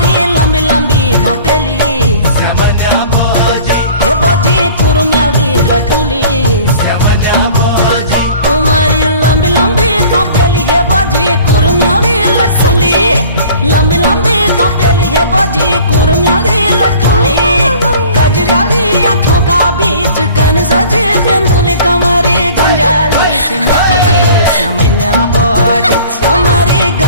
लंबी लंबी घोपेली समन्या बोजी हे बोजी कुरमेली लटुली समन्या बोजी तुम्हारी लंबी लंबी घोपेली हे बोजी कुरमेली लटुली लंबी लंबी घोपेली हे बोजी कुरमेली लटुली गजराली आँखों का बीच कन सजे बिंदुली कमरे गंजाली से मुठी समन्या बोजी हमारी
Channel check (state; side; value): inverted; both; correlation -0.47